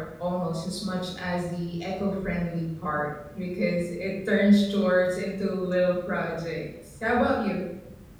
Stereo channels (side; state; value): both; identical; correlation 1.00